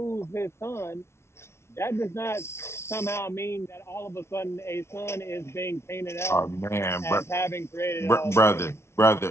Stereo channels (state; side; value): late; right; 0.13 ms